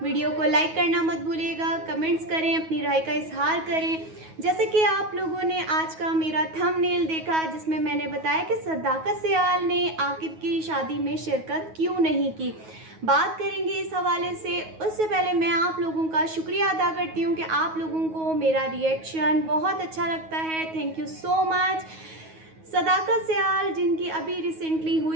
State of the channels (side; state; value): left; late; 9.4 ms